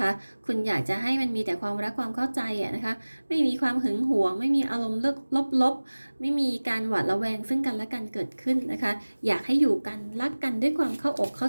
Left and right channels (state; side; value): inverted; both; correlation -1.00